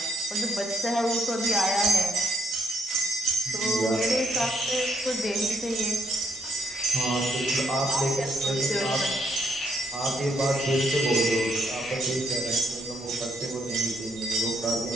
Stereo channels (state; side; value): normal; both; correlation 0.74